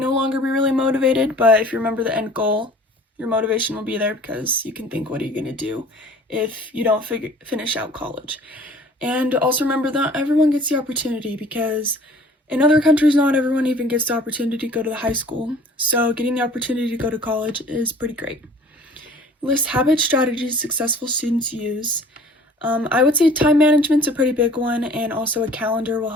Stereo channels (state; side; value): normal; both; correlation 0.50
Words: longer be really motivated, but if you remember the end goal, your motivation will be there because you can think, what are you going to do if you don't finish out college? And also remember that everyone gets the opportunity, because in other countries, not everyone even gets the opportunity to go to the high school. So getting the opportunity to go to college is pretty great. List habit strategies successful students use. I would say time management's a pretty big one, and also a calendar will